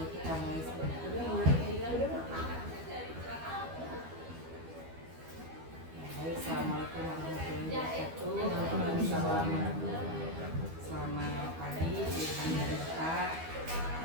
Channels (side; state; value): left; late; 12 ms